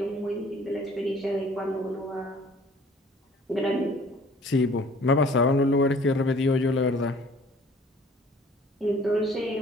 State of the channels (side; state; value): both; normal; correlation 0.53